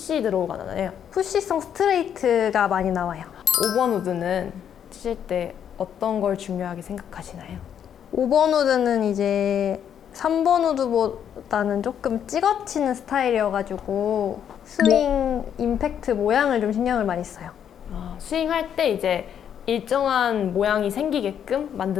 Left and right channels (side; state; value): right; quieter; 8.9 dB